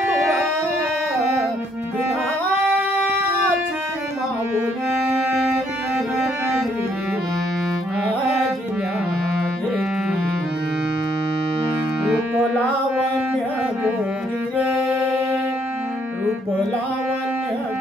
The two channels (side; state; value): both; normal; correlation 0.69